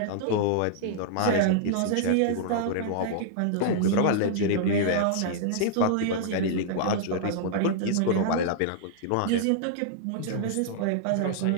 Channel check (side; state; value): both; different; correlation -0.01